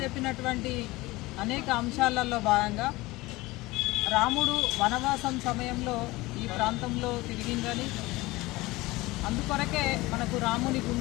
చెప్పినటువంటి అనేక అంశాలలో భాగంగా రాముడు వనవాసం సమయంలో ఈ ప్రాంతంలో తిరిగిందని, అందుకొరకే మనకు రాముని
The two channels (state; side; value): quieter; right; 20.5 dB